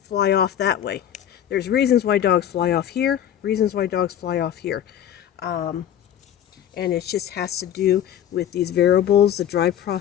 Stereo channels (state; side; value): quieter; right; 10.4 dB